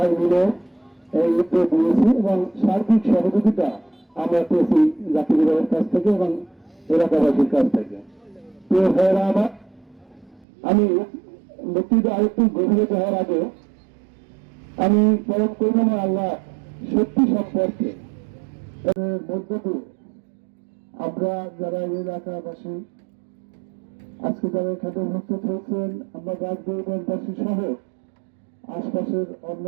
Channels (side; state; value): left; drops out; at 10.5 s